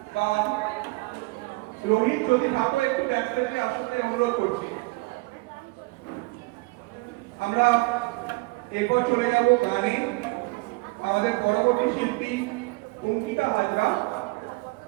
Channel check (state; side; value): quieter; left; 25.0 dB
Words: বা রোহিত যদি থাকো একটু ব্যাকস্টেজে আসতে অনুরোধ করছি। আমরা এরপর চলে যাব গানে। আমাদের পরবর্তী শিল্পী অঙ্কিতা হাজরা